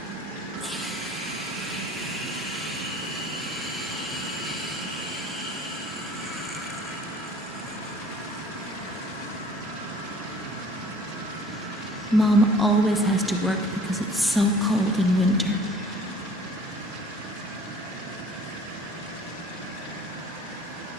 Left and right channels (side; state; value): both; normal; correlation 0.51